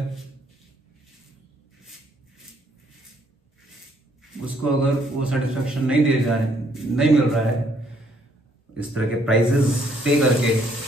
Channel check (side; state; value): both; normal; correlation 0.68